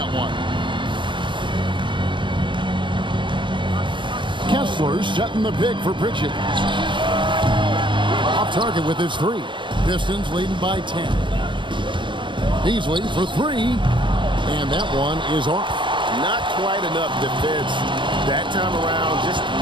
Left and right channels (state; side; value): late; left; 0.23 ms